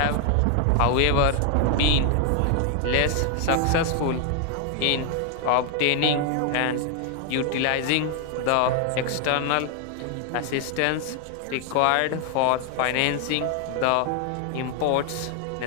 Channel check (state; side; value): different; both; correlation 0.00